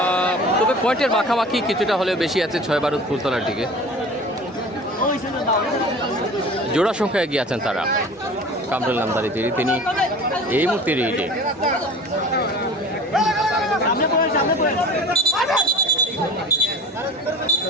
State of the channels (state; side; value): normal; both; correlation 0.40